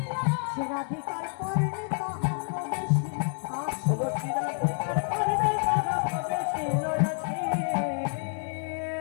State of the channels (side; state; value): right; silent; 59 dB below the other